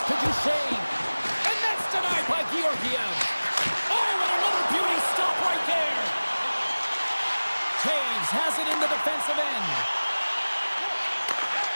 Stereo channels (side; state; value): both; inverted; correlation -1.00